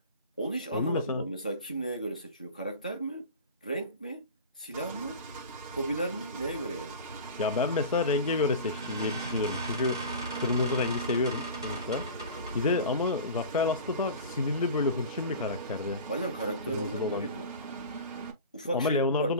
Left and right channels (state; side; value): inverted; both; correlation -0.35